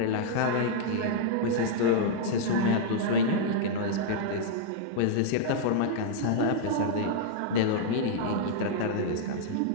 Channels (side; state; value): both; different; correlation -0.01